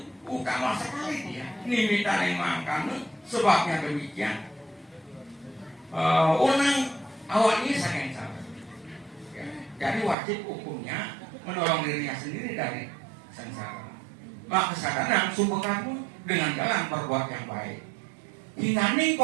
utama sekali dia. Nimita makan sebabnya demikian. Orang awalnya sangat salah. Ya. Jadi wajib hukumnya menolong dirinya sendiri dari sengsara. Maka kesadaran sumber kamu dengan jalan berbuat yang baik. Hingganing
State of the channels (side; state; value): left; drops out; at 10.2 s